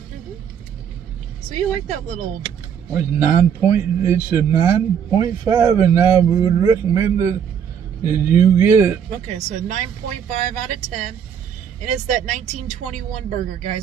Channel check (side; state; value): left; quieter; 8.0 dB